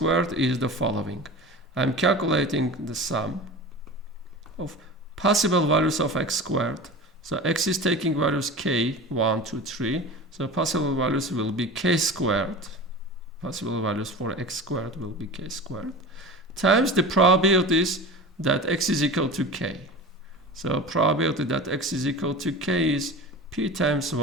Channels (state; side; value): normal; both; correlation 0.33